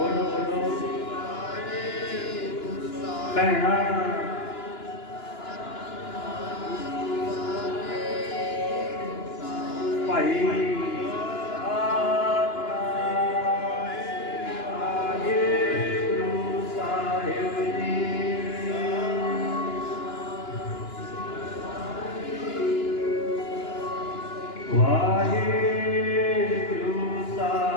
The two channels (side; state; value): right; late; 2.9 ms